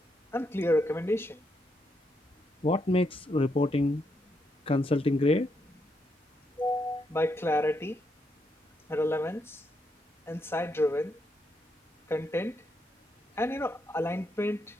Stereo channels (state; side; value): normal; both; correlation 0.79